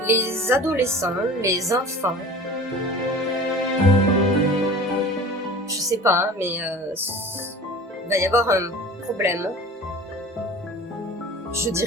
Les adolescents, les enfants, je sais pas, hein, mais il va y avoir un problème. Je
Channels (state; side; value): normal; both; correlation 0.40